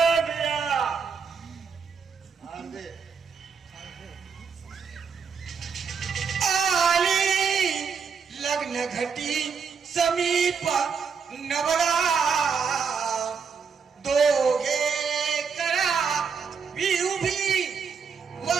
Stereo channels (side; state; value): left; quieter; 6.0 dB